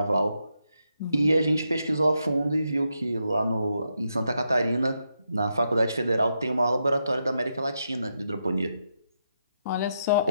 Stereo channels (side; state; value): both; inverted; correlation -0.83